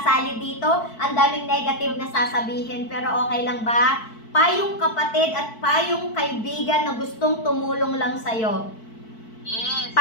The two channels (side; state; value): right; late; 4.6 ms